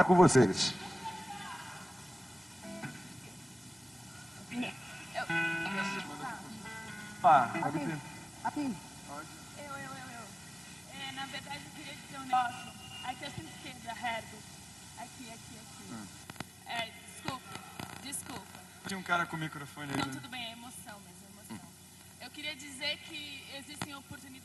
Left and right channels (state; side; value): normal; both; correlation 0.97